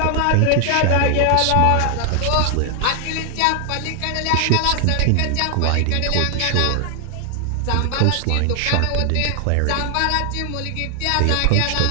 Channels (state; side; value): different; both; correlation 0.00